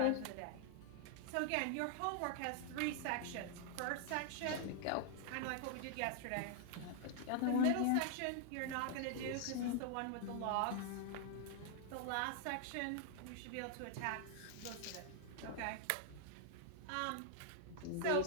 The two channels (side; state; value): both; different; correlation 0.00